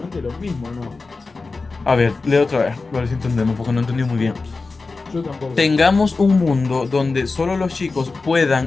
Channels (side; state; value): right; quieter; 3.9 dB